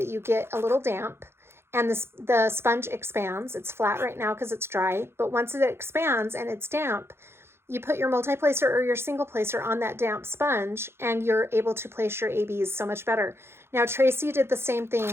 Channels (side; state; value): left; late; 0.12 ms